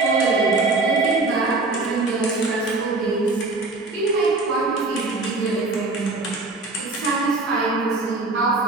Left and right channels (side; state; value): left; quieter; 3.4 dB